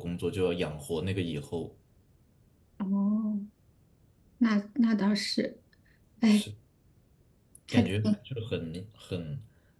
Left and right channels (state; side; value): identical; both; correlation 1.00